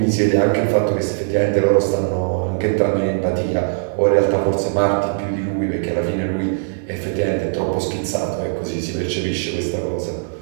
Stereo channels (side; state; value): left; silent; digital silence